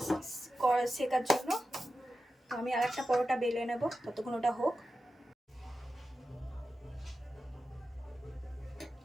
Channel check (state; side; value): normal; both; correlation 0.92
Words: সেকার জন্য। আমি আর একটা পরোটা বেলে নেব, ততক্ষণ ওটা হোক।